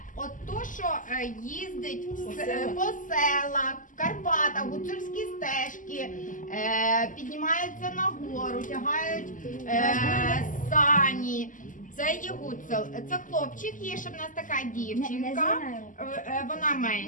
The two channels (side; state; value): right; late; 0.38 ms